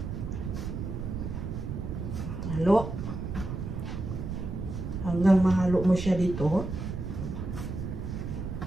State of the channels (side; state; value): right; noise; rumble, 5 dB below the sound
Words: Halo. Hanggang mahalo mo siya dito.